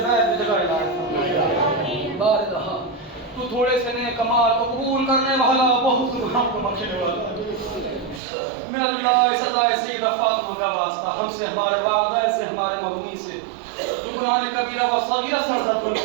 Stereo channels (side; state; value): left; drops out; at 8.2 s